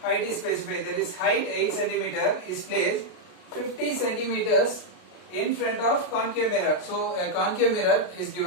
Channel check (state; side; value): late; right; 33 ms